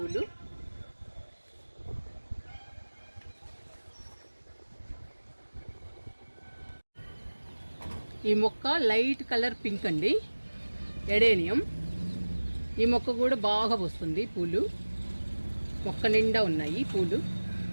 ఈ మొక్క లైట్ కలర్ పింక్ అండి, ఎడేనియం. ఈ మొక్క కూడా బాగా పూస్తుంది పూలు. మొక్క నిండా ఉన్నాయి పూలు.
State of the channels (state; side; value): inverted; both; correlation -1.00